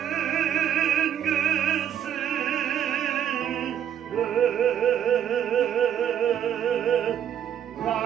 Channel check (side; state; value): left; quieter; 9.7 dB